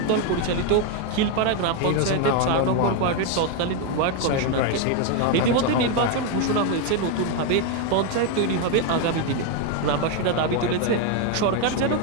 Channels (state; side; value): different; both; correlation 0.01